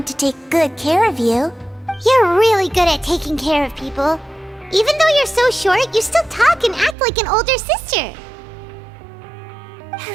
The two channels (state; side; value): drops out; left; at 7.0 s